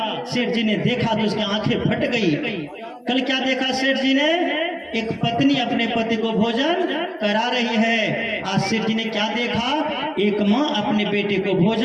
शेर जी ने देखा तो उसकी आंखें फट गई। कल क्या देखा शेर जी ने, एक पत्नी अपने पति को भोजन करा रही है। आज शेर जी ने क्या देखा, एक माँ अपने बेटे को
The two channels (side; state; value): both; identical; correlation 1.00